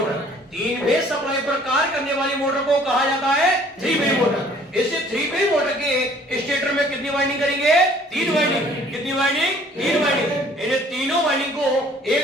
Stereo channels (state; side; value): normal; both; correlation 0.56